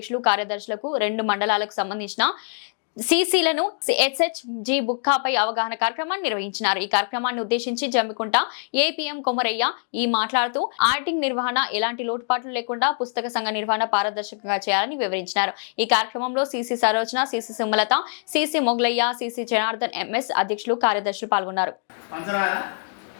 కార్యదర్శులకు 2 మండలాలకు సంబంధించిన సిసిలను ఎస్హెచ్జి బుక్కాపై అవగాహన కార్యక్రమాన్ని నిర్వహించారు. ఈ కార్యక్రమాన్ని ఉద్దేశించి జమ్మికుంట ఏపీఎం కొమరయ్య మాట్లాడుతూ ఆడిటింగ్ నిర్వహణ ఎలాంటి లోటుపాట్లు లేకుండా పుస్తక సంఘ నిర్వహణ పారదర్శకంగా చేయాలని వివరించారు. ఈ కార్యక్రమంలో CC Sarojana, CC Sumalatha, CC Mogalaiah, CC Janardhan MS అధ్యక్షులు కార్యదర్శులు పాల్గొన్నారు.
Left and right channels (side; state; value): right; silent; 63 dB below the other